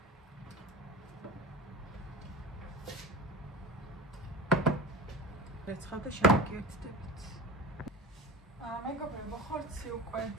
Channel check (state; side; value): normal; both; correlation 0.31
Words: რეცხავდა შევიკეთდებით. მეგობრებო, ხორცი უკვე